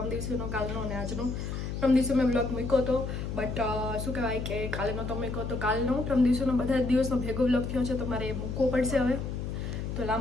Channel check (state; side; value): noise; left; hum, 4 dB below the sound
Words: દિવસનો, કાલનો અને આજનો. પરમ દિવસે મેં વ્લોગ મૂક્યો હતો, બટ શું કહેવાય કે કાલે નહોતો મૂક્યો તો કાલનો પરમ દિવસનો બધા જ દિવસનો ભેગો વ્લોગ થયો છે તો મારે મૂકવો પડશે હવે. તો